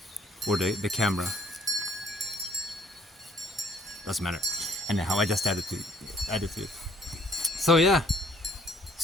Or the camera. Doesn't matter. Anyhow, I just added to it. So yeah.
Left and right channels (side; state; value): both; normal; correlation 0.63